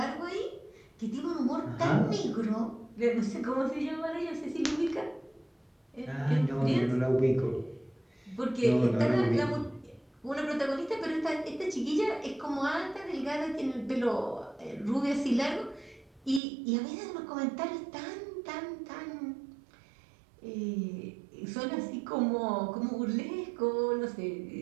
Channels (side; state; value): left; drops out; at 16.4 s